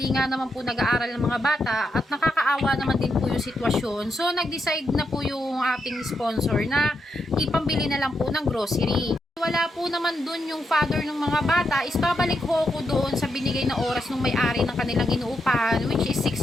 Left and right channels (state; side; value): normal; both; correlation 0.83